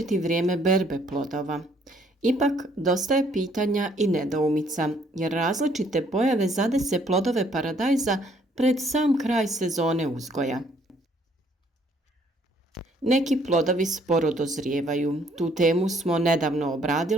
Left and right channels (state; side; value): normal; both; correlation 0.65